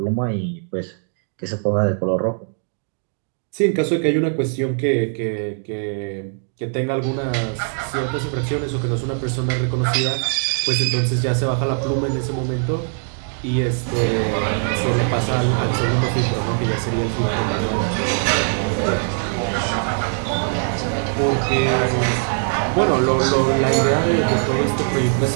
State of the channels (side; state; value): left; silent; 59 dB below the other